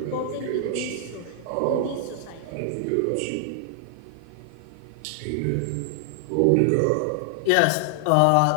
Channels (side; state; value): both; different; correlation 0.00